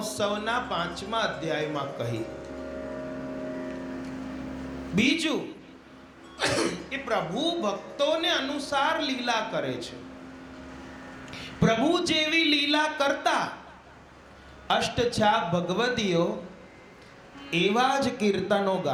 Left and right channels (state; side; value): identical; both; correlation 1.00